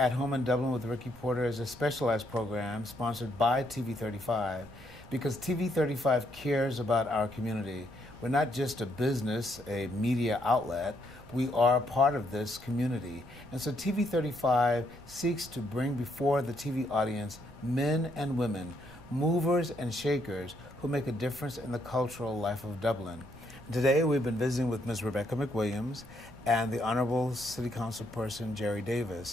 Home in Dublin with Ricky Porter is a specialized program sponsored by TV35 because TV35 cares about our community. We're not just a business, a media outlet. We are part of this community. And so TV35 seeks to bring before the TV audience men and women, movers and shakers who make a difference in the cultural life of Dublin. Today we've been visiting with Ms. Rebecca McWilliams and the Honorable City Council person Jerry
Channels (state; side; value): noise; right; rumble, 21 dB below the sound